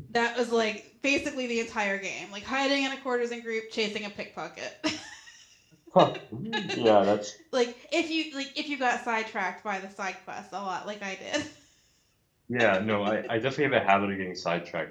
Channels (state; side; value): identical; both; correlation 1.00